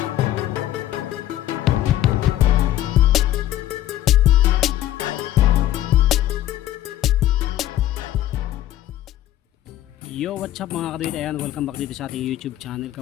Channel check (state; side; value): quieter; right; 13.3 dB